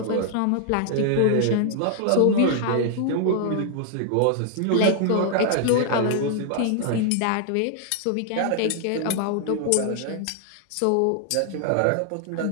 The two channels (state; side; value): different; both; correlation 0.00